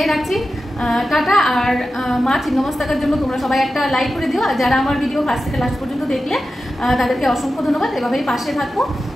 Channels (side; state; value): both; normal; correlation 0.92